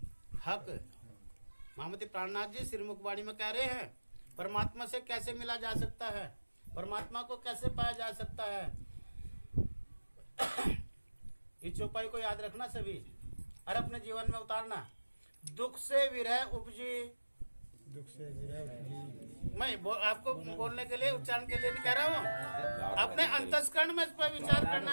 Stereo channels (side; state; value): both; inverted; correlation -1.00